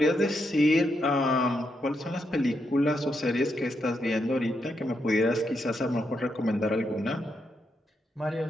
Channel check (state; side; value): normal; both; correlation 0.81